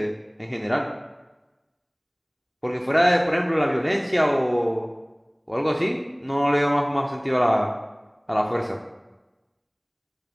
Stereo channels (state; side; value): identical; both; correlation 1.00